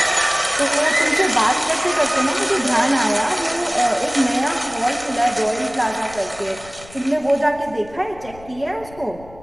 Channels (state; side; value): noise; left; rumble, 20 dB below the sound